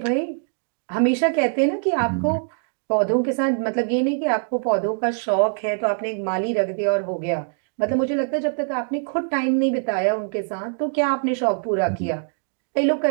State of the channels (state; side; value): silent; left; digital silence